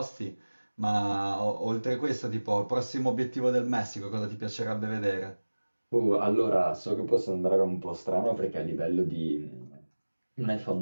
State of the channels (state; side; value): inverted; both; correlation -1.00